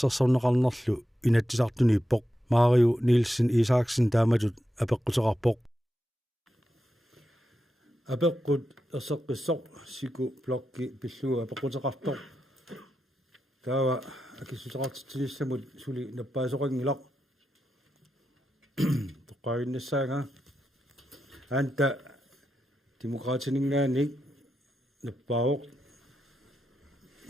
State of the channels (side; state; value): both; normal; correlation 0.88